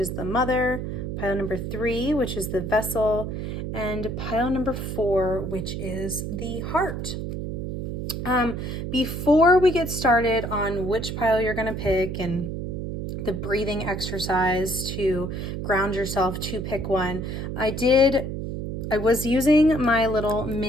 the mother, pile number 3, which is the vessel, and pile number 4, which is the heart. Before we get started on which pile you're going to pick and the breathing exercise to ground yourself to pick one, I was using my little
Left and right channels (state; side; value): noise; right; hum, 5 dB below the sound